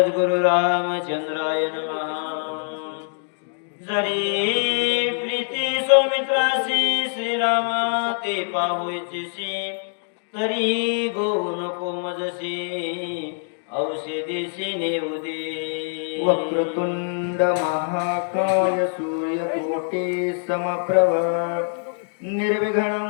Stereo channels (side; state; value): right; silent; digital silence